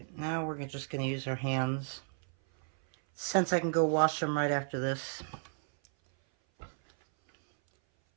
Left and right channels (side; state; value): left; silent; 56 dB below the other